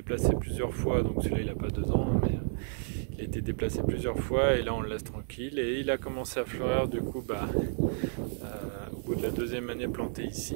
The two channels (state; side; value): silent; left; digital silence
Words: plusieurs fois, donc celui-là il n'a pas 2 ans, mais il a été déplacé plusieurs fois et là on le laisse tranquille, et il a commencé à fleurir du coup au bout de la 2e année plantée